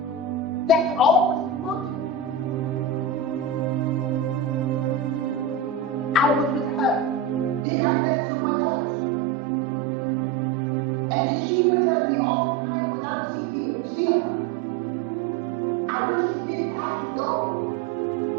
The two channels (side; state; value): left; drops out; at 7.7 s